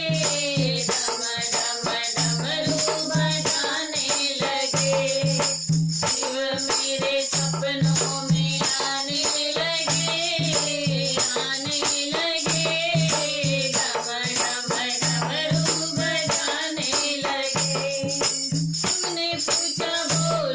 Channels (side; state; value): both; identical; correlation 1.00